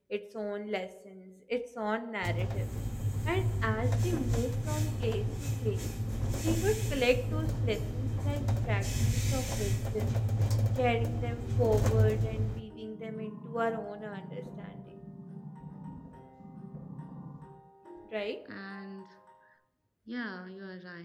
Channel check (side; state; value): both; identical; correlation 1.00